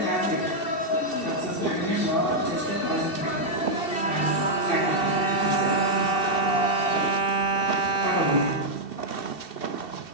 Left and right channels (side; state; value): right; late; 2.7 ms